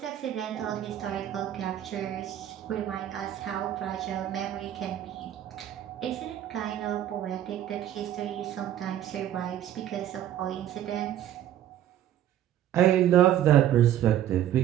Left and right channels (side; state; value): left; quieter; 11.6 dB